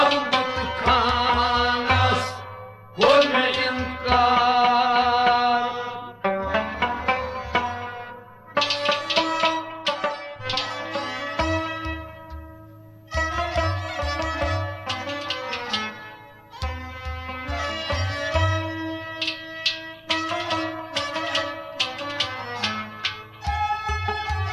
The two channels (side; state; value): both; identical; correlation 1.00